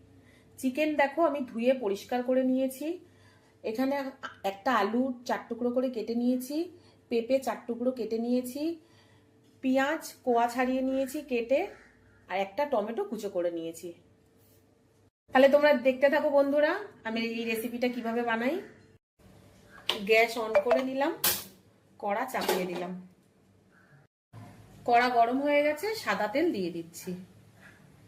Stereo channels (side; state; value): both; identical; correlation 1.00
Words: চিকেন দেখো আমি ধুয়ে পরিষ্কার করে নিয়েছি। এখানে একটা আলু 4 টুকরো করে কেটে নিয়েছি, পেঁপে 4 টুকরো কেটে নিয়েছি, পেঁয়াজ কোয়া ছাড়িয়ে নিয়েছি কেটে, আর একটা টমেটো কুচো করে নিয়েছি। তাহলে তোমরা দেখতে থাকো বন্ধুরা, আমি এই রেসিপিটা কিভাবে বানাই। গ্যাস অন করে নিলাম, কড়া চাপিয়ে দিলাম। কড়া গরম হয়ে গেছে, সাদা তেল দিয়ে দিচ্ছি।